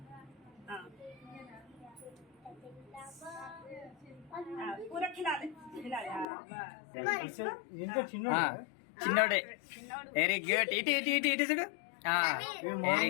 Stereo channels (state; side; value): drops out; right; at 6.2 s